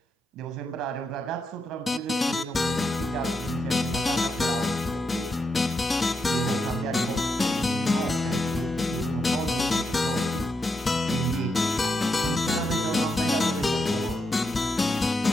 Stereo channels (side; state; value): both; normal; correlation 0.84